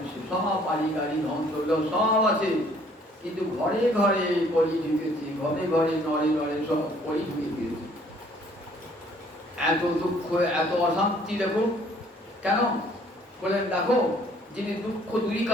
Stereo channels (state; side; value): normal; both; correlation 0.60